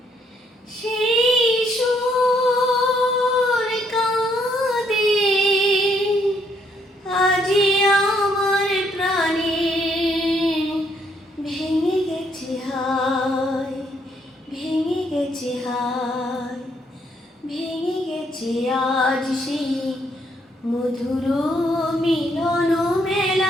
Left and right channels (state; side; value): normal; both; correlation 0.70